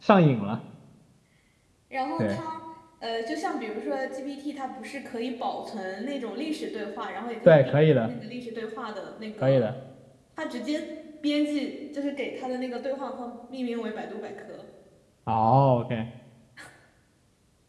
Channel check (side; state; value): both; identical; correlation 1.00